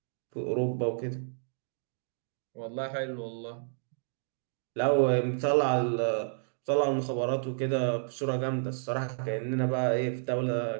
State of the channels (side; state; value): left; silent; digital silence